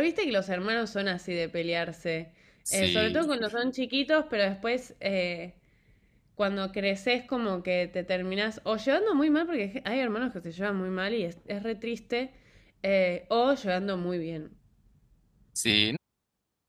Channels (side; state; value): both; identical; correlation 1.00